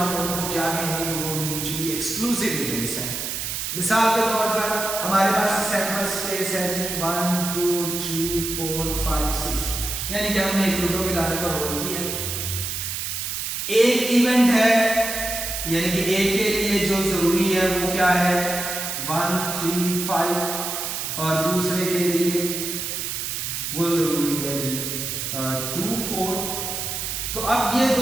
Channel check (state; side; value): noise; right; hiss, 3 dB below the sound